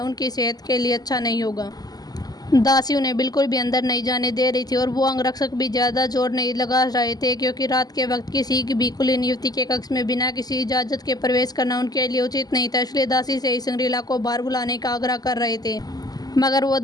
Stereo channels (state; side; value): late; right; 0.19 ms